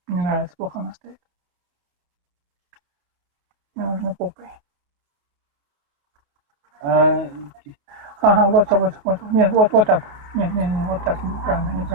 Мне нравится, плохо она стоит. Мне нужно попой. Ага, вот. Нет, вот так. Не, вот так.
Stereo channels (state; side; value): late; left; 28 ms